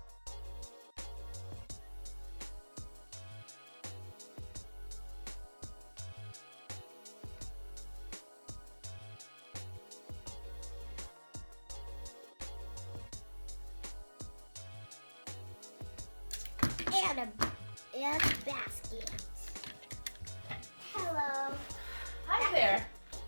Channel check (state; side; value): inverted; both; correlation -1.00